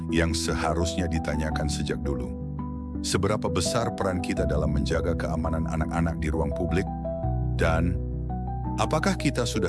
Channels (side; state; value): both; identical; correlation 1.00